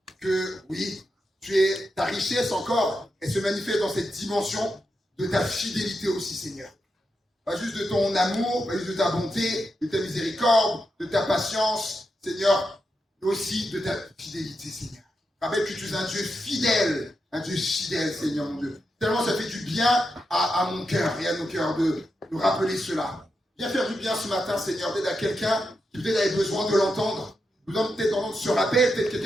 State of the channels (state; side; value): normal; both; correlation 0.86